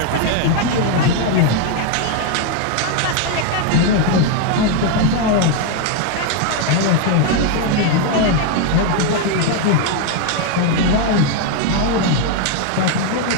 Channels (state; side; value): different; both; correlation 0.01